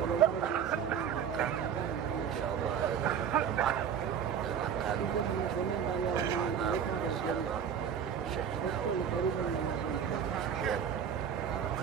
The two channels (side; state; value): left; quieter; 8.0 dB